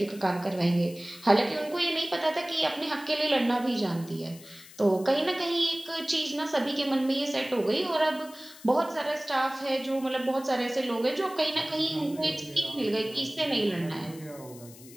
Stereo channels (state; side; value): noise; left; hiss, 20 dB below the sound